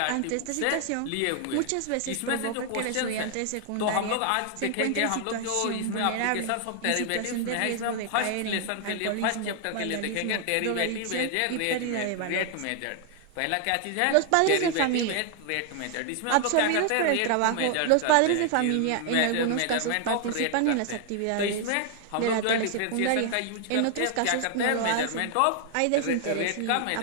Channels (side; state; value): both; different; correlation 0.00